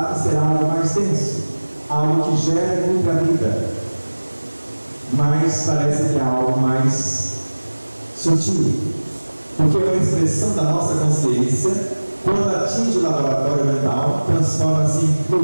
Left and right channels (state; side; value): inverted; both; correlation -1.00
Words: ser algo mais denso, algo que gera e nutre a vida, mas parece que é algo mais sutil, porque é uma expressão da nossa consciência. Quando atinge o laboratório mental, transforma-se em